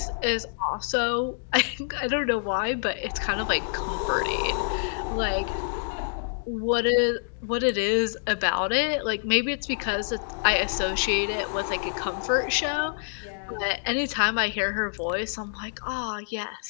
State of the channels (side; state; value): right; silent; digital silence